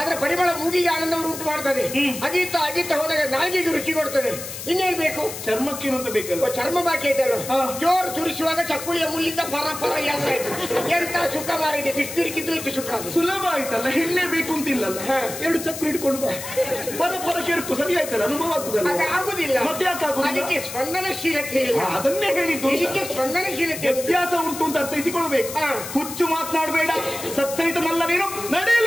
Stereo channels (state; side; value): noise; left; hiss, 9 dB below the sound